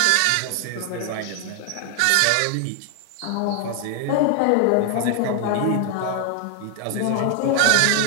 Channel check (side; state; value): both; different; correlation 0.00